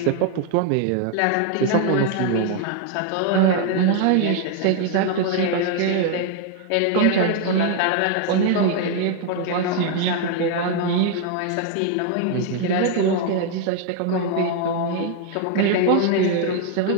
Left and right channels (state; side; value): different; both; correlation 0.00